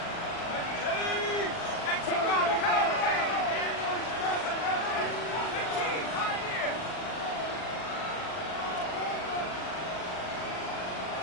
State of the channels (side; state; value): right; late; 39 ms